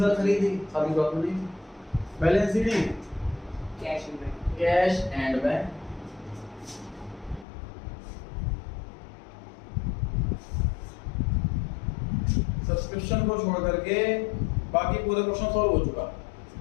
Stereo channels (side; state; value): right; drops out; at 7.5 s